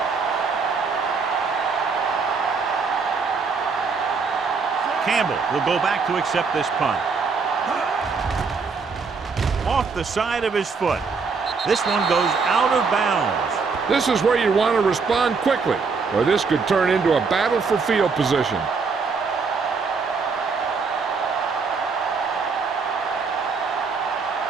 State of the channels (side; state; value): left; quieter; 4.9 dB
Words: Campbell will go back to accept this punt. Off the side of his foot. This one goes out of bounds. This is where you want to respond quickly, or this could turn into a battle for field position.